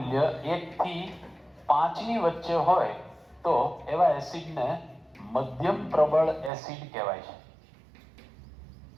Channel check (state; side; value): drops out; left; at 6.5 s